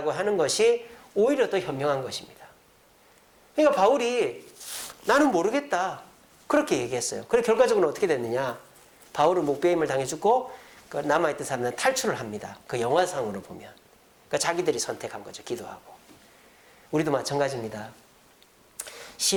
하는 것이 오히려 더 현명한 것입니다. 그러니까 바울이 나는 모르겠다. 그렇게 얘기했어요. 그래 결과적으로 어떻게 됐느냐. 바울은 목배임을 당해 죽고 그 남아있던 사람들은 탈출을 합니다. 그 영화상으로 보면. 그러니까 자기들이 선택한 거죠. 기도하고. 우리도 마찬가지입니다.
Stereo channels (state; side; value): identical; both; correlation 1.00